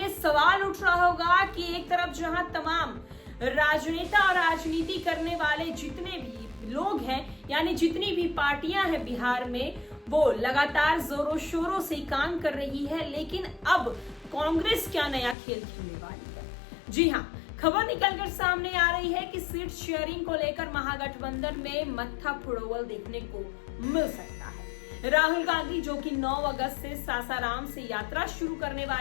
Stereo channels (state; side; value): drops out; right; at 15.4 s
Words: सवाल उठ रहा होगा कि एक तरफ जहां तमाम राजनेता और राजनीति करने वाले जितने भी लोग हैं, यानी जितनी भी पार्टियां हैं बिहार में, वो लगातार जोरों शोरों से काम कर रही है, लेकिन अब कांग्रेस क्या नया खेल खेलने वाली है। जी हाँ, खबर निकलकर सामने आ रही है कि सीट शेयरिंग को लेकर महागठबंधन में मत्था फुड़ोवल देखने को मिल सकता है। राहुल गांधी जो कि 9 अगस्त से सासाराम से यात्रा शुरू करने